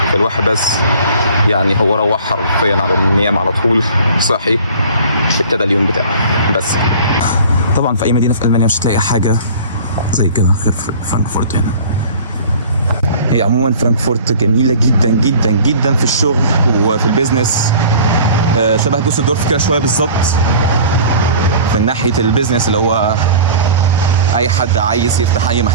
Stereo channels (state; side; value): inverted; both; correlation -0.44